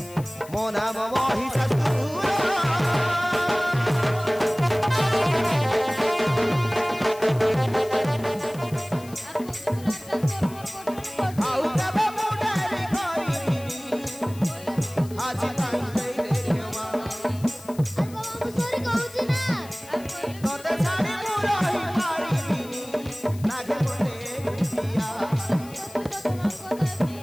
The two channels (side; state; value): left; noise; hiss, 20 dB below the sound